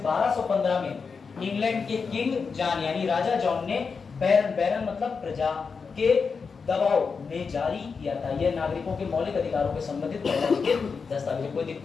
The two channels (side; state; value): right; quieter; 5.3 dB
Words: में इंग्लैंड के किंग जॉन यानी राजा जॉन ने बैरन मतलब प्रजा के दबाव में जारी किया था। यह नागरिकों के मौलिक अधिकारों के संबंधित दस्तावेज। कोई